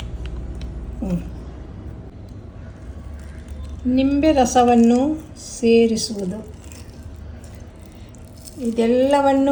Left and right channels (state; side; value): identical; both; correlation 1.00